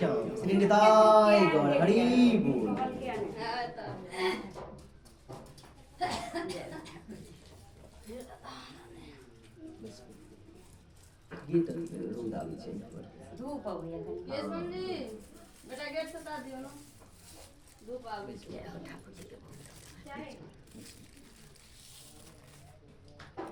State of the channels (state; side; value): identical; both; correlation 1.00